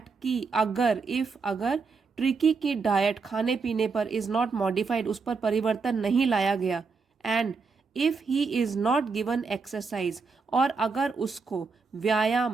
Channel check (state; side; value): quieter; left; 4.7 dB